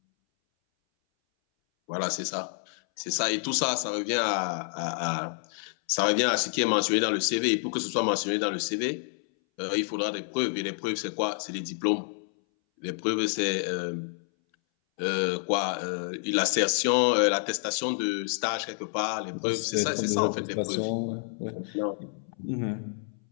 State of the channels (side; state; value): right; silent; 59 dB below the other